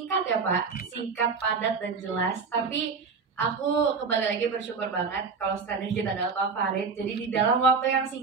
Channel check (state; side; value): quieter; left; 5.1 dB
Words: ya Pak, singkat, padat dan jelas. Tapi aku kembali lagi bersyukur banget kalau standar kita adalah Pak Farid. Jadi di dalam waktu yang